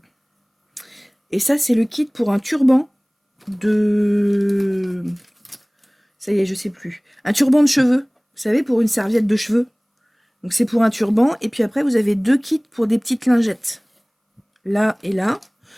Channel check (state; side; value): identical; both; correlation 1.00